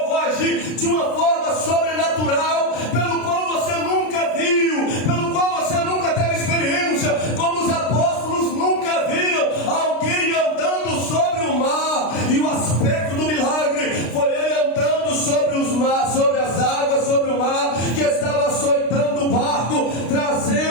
vou agir de uma forma sobrenatural, pelo qual você nunca viu, pelo qual você nunca teve experiência, como os apóstolos nunca viram alguém andando sobre o mar. E o aspecto do milagre foi ele andando sobre as águas, sobre o mar, que estava açoitando o barco,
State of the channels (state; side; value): late; right; 33 ms